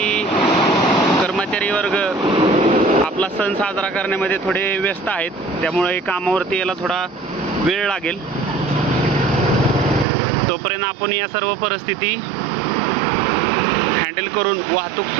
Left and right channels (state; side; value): drops out; left; at 10.1 s